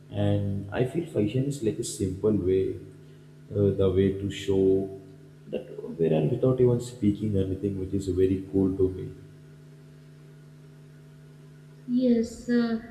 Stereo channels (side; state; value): both; identical; correlation 1.00